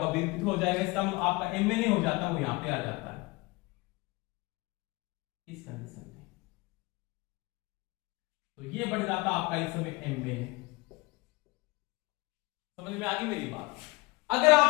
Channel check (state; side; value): quieter; right; 23.5 dB